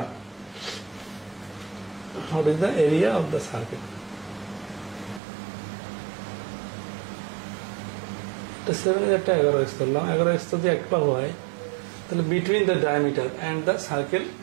What is the area of the circle? এটা 7 এর একটা 11x ধরলাম, 11x যদি একটা হয় তাহলে between the diameter and the circle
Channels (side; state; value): left; drops out; at 5.2 s